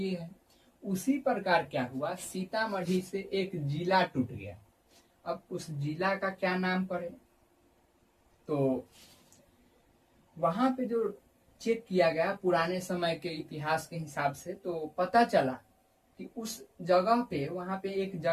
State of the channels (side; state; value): both; identical; correlation 1.00